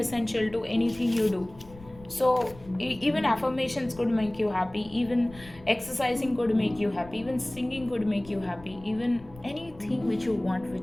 to anything you do. So even affirmations could make you happy, even exercising could make you happy, even singing could make you happy, even anything which you want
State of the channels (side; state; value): left; noise; rumble, 20 dB below the sound